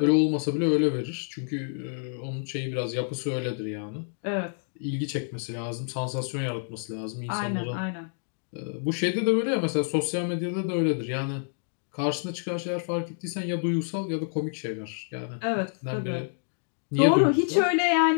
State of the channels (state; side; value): silent; right; digital silence